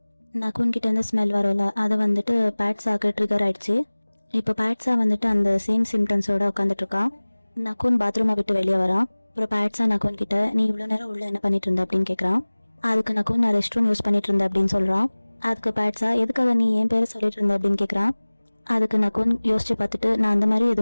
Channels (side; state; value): both; inverted; correlation -1.00